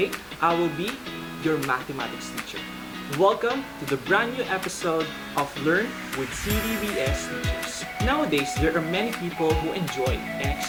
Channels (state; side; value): identical; both; correlation 1.00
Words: I will be your mathematics teacher. Welcome to the brand new episode of Learn with CDBS Teachers. Nowadays, there are many people who enjoy and